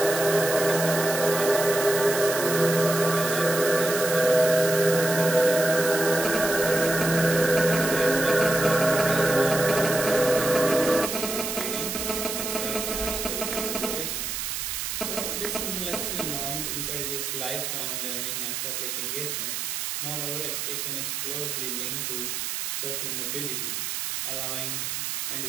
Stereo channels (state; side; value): noise; right; hiss, 3 dB below the sound